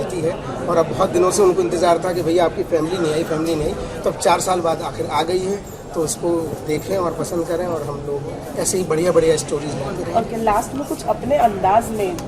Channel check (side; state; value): both; identical; correlation 1.00